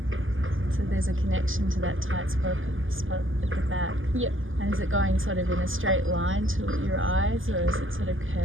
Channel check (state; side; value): late; left; 0.58 ms